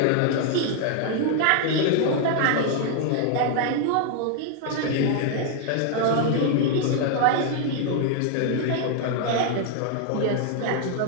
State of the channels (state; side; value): different; both; correlation 0.00